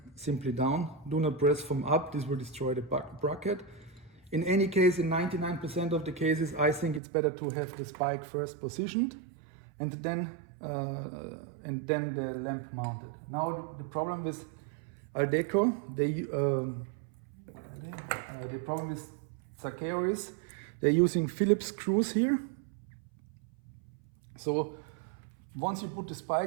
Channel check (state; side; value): drops out; left; at 7.0 s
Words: simply down. Do not press from up, this will destroy the bracket. In any case, in 99% of the cases, I think it's better to have the spike first positioned and then the lamp mounted. Now the problem with Ledeco, the problem with Zaccheo is they're using Phillips screws here. So once you put the